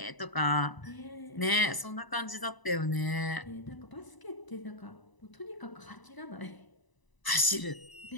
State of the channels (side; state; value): right; late; 1.0 ms